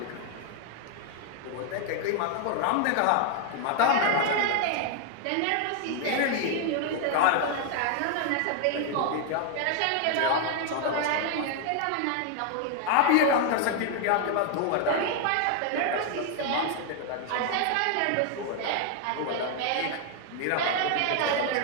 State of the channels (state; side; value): different; both; correlation 0.00